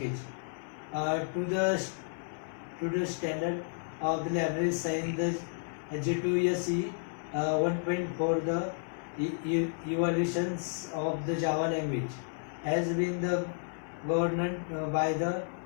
to the standard of the library signed the J2SE 1.4. The evolutions of the Java language has been the governed by the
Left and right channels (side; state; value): right; silent; 56 dB below the other